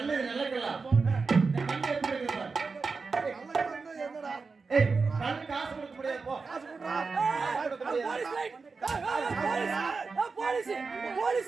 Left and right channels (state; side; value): quieter; left; 4.5 dB